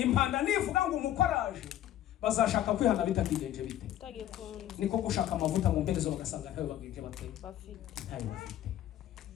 nivuga ngo umukoraje, bazashaka kwihana bitakigenje bite, niko gushaka amavuta mu mperezo bagasanga ntayo bagenje bafite.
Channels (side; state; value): right; quieter; 12.3 dB